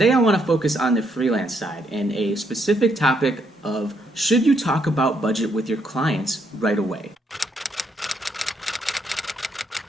I want to focus on the freelance side and a specific topic of should you talk about budget with your clients right away?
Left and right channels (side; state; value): both; normal; correlation 0.75